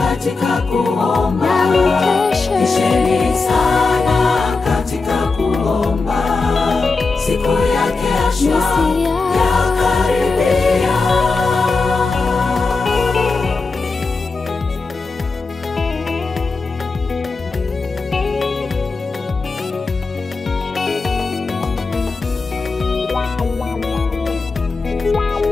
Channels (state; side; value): quieter; right; 4.0 dB